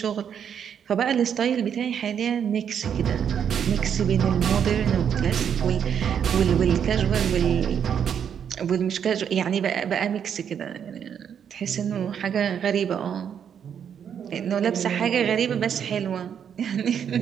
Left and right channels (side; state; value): left; quieter; 8.2 dB